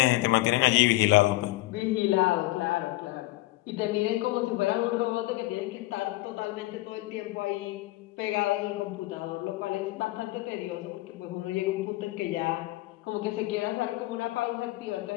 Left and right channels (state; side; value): quieter; right; 19.0 dB